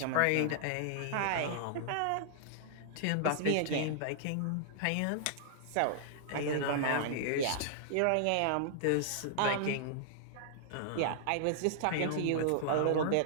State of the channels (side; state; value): both; different; correlation -0.01